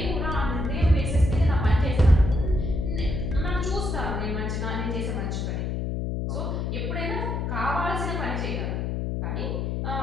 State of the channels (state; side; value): noise; left; hum, 1 dB below the sound